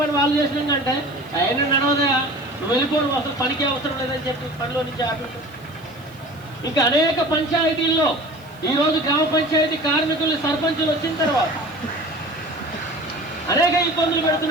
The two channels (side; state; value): right; noise; hiss, 28 dB below the sound